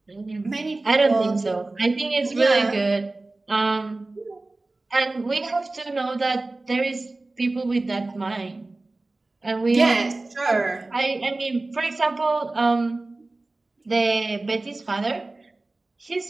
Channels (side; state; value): left; quieter; 3.1 dB